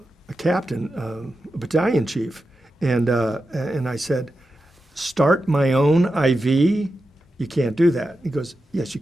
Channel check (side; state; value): both; normal; correlation 0.90